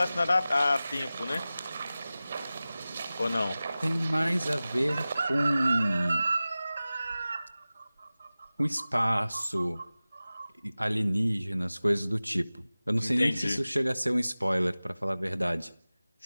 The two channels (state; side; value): inverted; both; correlation -0.97